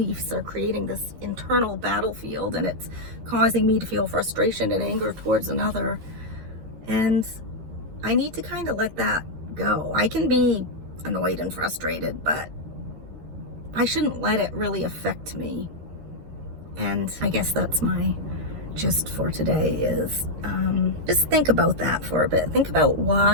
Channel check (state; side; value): late; left; 13 ms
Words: are creating this internal battlefield, and it's causing me to feel frustration and anger towards another. And I need to kind of let that go. I can be annoyed and frustrated, but I shouldn't let it really affect me. And I guess that's my gist for today is just think about that for a bit. Think about